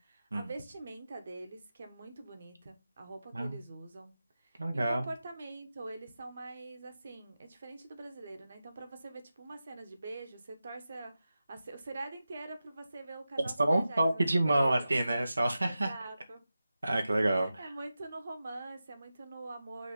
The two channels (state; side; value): inverted; both; correlation -0.93